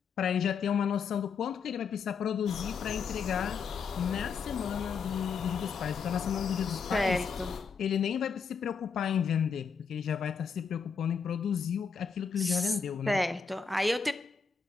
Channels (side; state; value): right; quieter; 5.9 dB